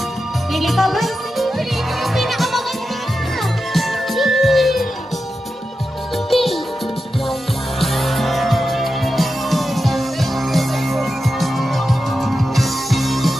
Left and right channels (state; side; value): normal; both; correlation 0.90